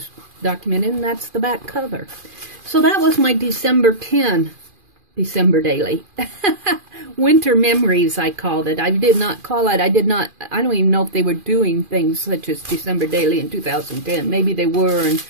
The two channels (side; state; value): left; late; 2.4 ms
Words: documented, and that's the back cover. So that was my December 10 December daily. Winter memories, I called it. I did not call it, I don't even know if they were doing things such as December daily in 2010. Maybe they were, and